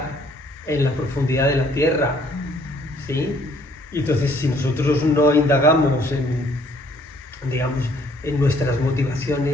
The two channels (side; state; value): both; normal; correlation 0.63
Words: en la profundidad de la tierra, ¿sí? Y entonces, si nosotros no indagamos en nuestras